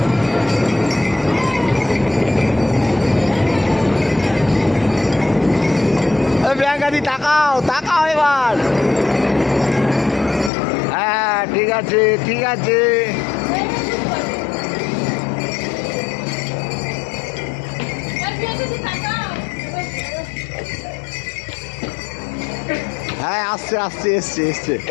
প্রিয়াঙ্কাদি তাকাও তাকাও এবার। হ্যাঁ ঠিক আছে ঠিক আছে। হ্যাঁ আসছে আসছে এসছে এসছে।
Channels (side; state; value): right; drops out; at 10.5 s